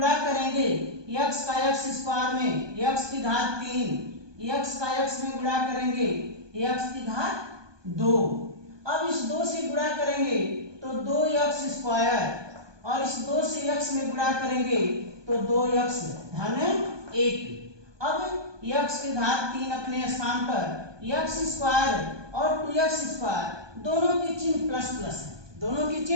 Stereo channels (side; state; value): left; late; 1.2 ms